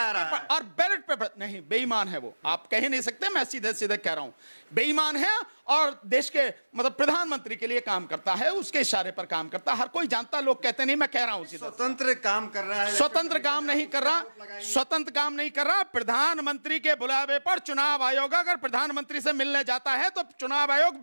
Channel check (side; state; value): both; inverted; correlation -1.00